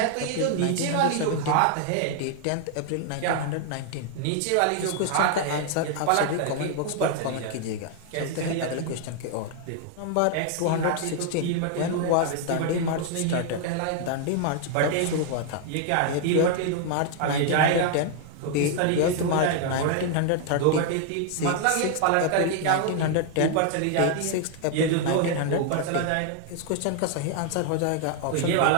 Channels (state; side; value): different; both; correlation 0.00